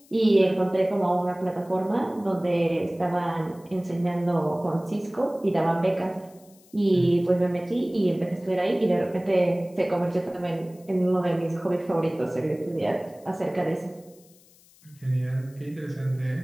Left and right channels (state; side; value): noise; left; hiss, 28 dB below the sound